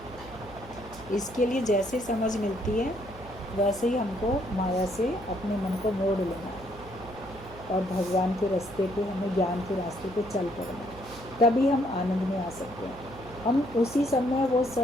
इसके लिए जैसे समझ मिलती है वैसे ही हमको माया से अपने मन को मोड़ लेना और भगवान के रास्ते पे, हमें ज्ञान के रास्ते पे चल पड़ना, तभी हम आनंद में आ सकते हैं। हम उसी समय वो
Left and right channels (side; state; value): right; noise; hum, 17 dB below the sound